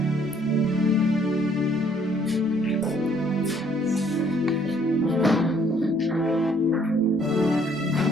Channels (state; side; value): normal; both; correlation 0.63